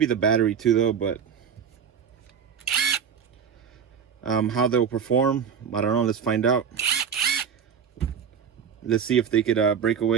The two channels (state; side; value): quieter; left; 7.4 dB